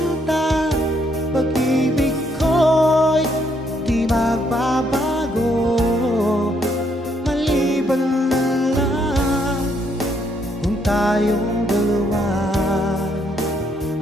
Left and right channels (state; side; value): normal; both; correlation 0.72